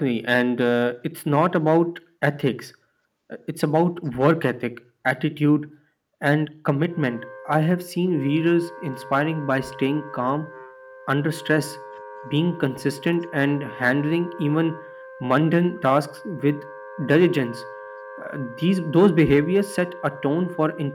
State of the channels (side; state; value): both; identical; correlation 1.00